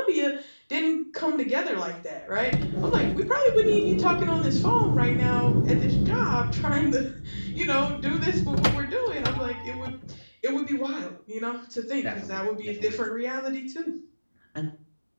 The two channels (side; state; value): both; inverted; correlation -1.00